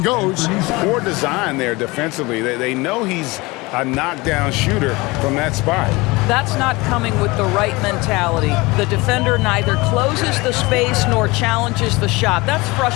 goes. Poor design there defensively. They know he's a knockdown shooter from that spot. That's not coming with the right mentality. The defender neither closes the space nor challenges the shot. That's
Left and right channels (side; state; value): right; quieter; 23.2 dB